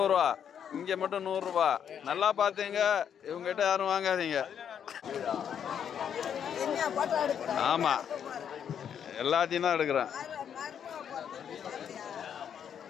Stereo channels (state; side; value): quieter; right; 8.4 dB